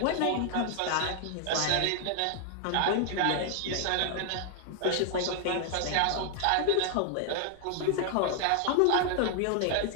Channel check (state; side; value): different; both; correlation 0.00